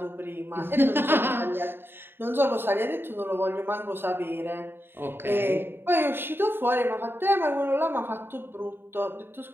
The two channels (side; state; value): left; late; 0.10 ms